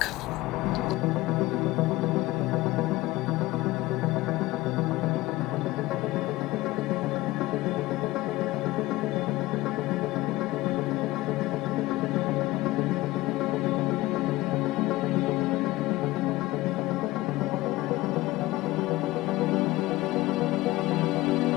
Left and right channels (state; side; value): quieter; right; 18.4 dB